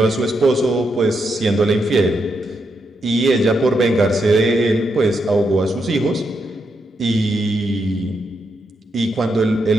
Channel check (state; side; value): normal; both; correlation 0.82